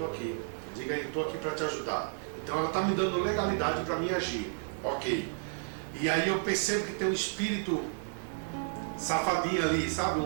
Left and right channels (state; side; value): silent; left; 56 dB below the other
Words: aqui. Diga aí, estou aqui para te ajudar. Então ela está me dando legalidade para mim agir. Ok. E aí eu percebo que tem um espírito safadinho ali, sabe?